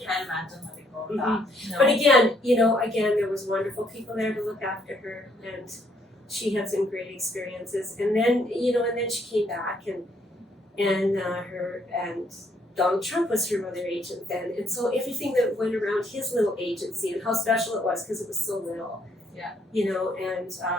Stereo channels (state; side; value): normal; both; correlation 0.69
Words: imagine letting go of that. No. But again, you know, there was wonderful people there to look after her, and she had some great experiences. And then, you know, and then she came back, and Donald Trump was her mother agent then, and so everything that went around his little agency and how special it was because it was so little. Yeah. You know, and